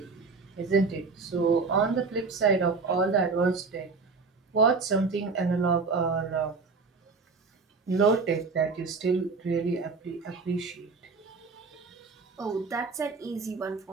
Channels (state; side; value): quieter; left; 4.4 dB